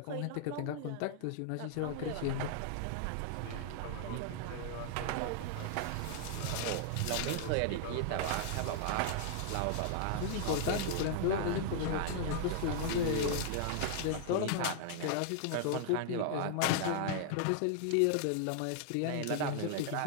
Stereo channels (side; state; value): both; different; correlation -0.01